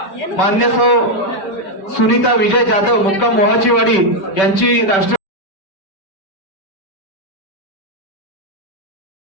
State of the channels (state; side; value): late; right; 5.2 ms